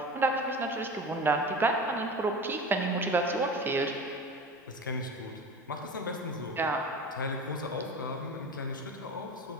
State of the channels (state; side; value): normal; both; correlation 0.33